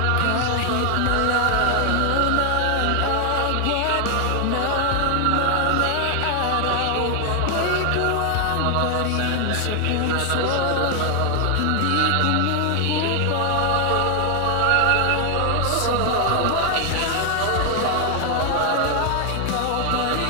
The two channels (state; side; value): different; both; correlation 0.00